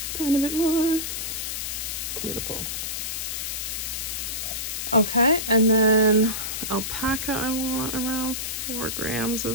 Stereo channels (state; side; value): noise; left; hiss, 3 dB below the sound